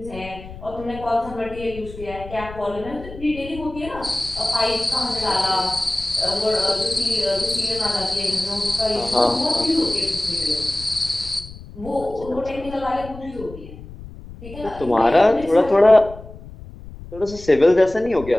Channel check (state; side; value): noise; left; rumble, 15 dB below the sound